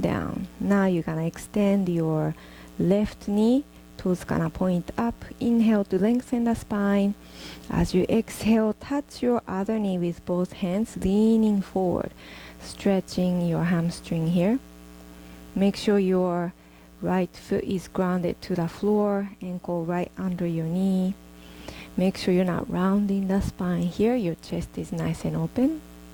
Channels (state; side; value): identical; both; correlation 1.00